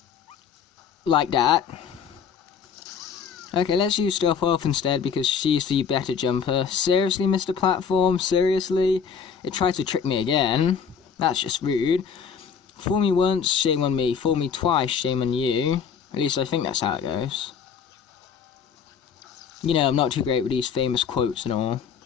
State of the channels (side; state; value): right; quieter; 6.8 dB